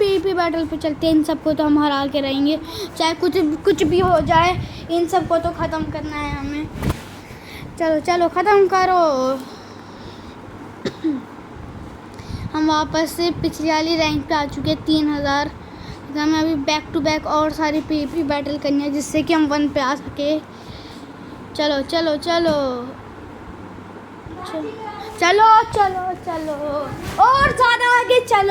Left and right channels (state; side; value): identical; both; correlation 1.00